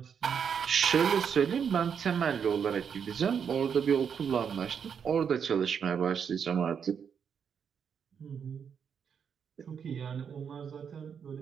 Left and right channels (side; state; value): left; quieter; 7.2 dB